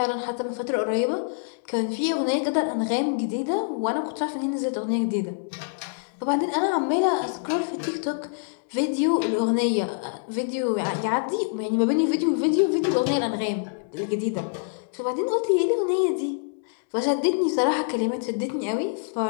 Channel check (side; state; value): right; silent; digital silence